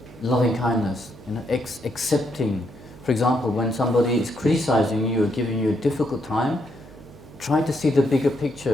loving kindness, you know, accepting. For example, when somebody is criticizing you or giving you a difficult time, try to see the bigger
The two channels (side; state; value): right; noise; hum, 21 dB below the sound